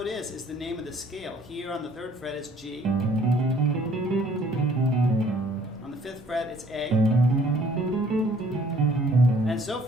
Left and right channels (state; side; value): normal; both; correlation 0.58